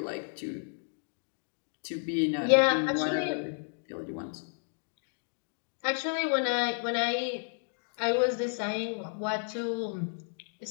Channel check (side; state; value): right; silent; 56 dB below the other